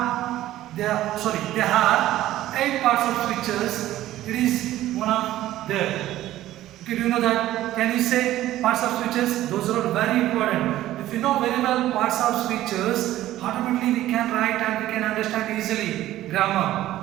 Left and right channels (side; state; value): left; quieter; 14.4 dB